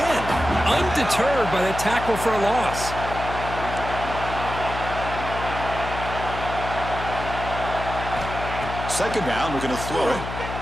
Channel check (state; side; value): noise; left; hum, 7 dB below the sound